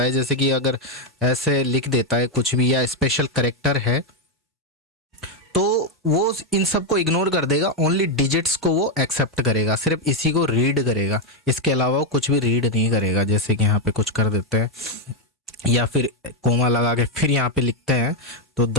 है, जैसे कि अगर ऐसे लिख देता है कुछ भी या स्पेशल करेक्टर है, तो वो इन सब को इग्नोर कर देगा। ओनली डिजिट्स को वो एक्सेप्ट करेगा, सिर्फ इसी को रीड करेगा, इसके अलावा वो कुछ भी रीड नहीं करेगा। जैसे कि यहाँ पे कुछ कर देते हैं या फिर कोमा लगा के फिर यहाँ पे लिखते हैं तो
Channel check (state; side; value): normal; both; correlation 0.03